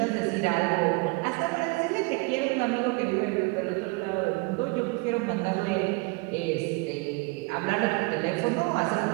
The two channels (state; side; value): quieter; left; 26.9 dB